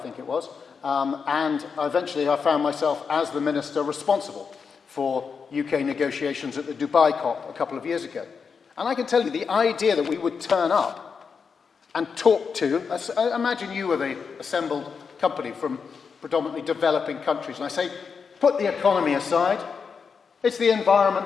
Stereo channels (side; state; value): right; quieter; 5.8 dB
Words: it was. and eventually I found myself as the minister responsible for UK negotiations at the Dubai COP a couple of years ago. And I can tell you, the idea that we would turn up and talk to, imagine you were the assembled company from predominantly developing countries, and I say, put the economy aside, it's the environment